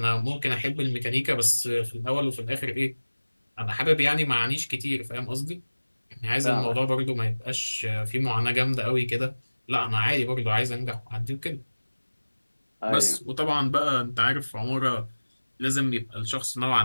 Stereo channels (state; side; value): inverted; both; correlation -1.00